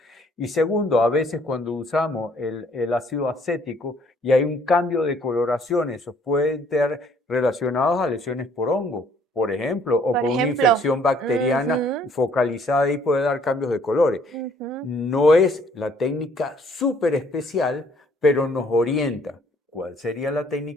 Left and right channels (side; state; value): both; normal; correlation 0.62